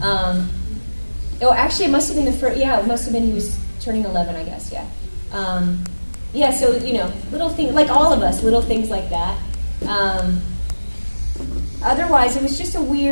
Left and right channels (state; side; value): inverted; both; correlation -1.00